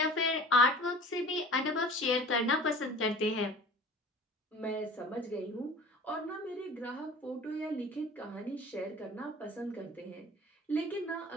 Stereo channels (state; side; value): normal; both; correlation 0.42